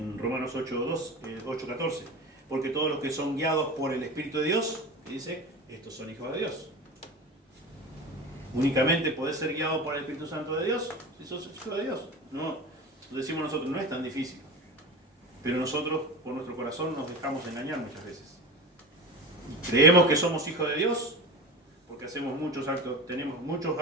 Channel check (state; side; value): normal; both; correlation 0.30